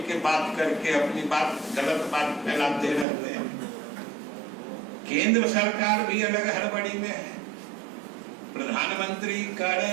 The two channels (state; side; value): drops out; left; at 3.1 s